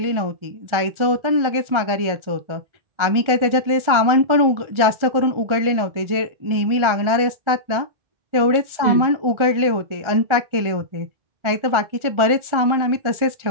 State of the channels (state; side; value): late; left; 1.4 ms